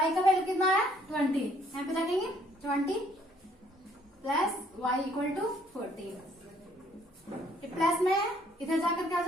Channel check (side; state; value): both; normal; correlation 0.64